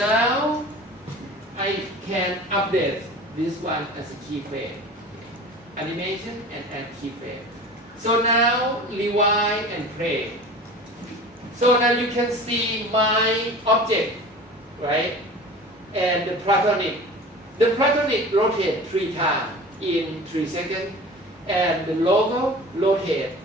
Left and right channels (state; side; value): normal; both; correlation 0.38